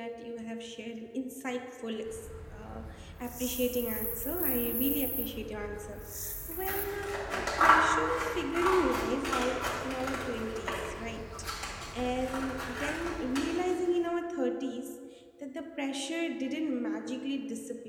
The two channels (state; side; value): identical; both; correlation 1.00